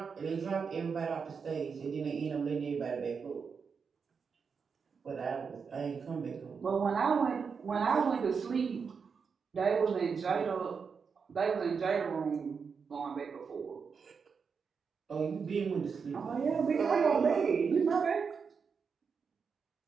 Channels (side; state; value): left; quieter; 5.8 dB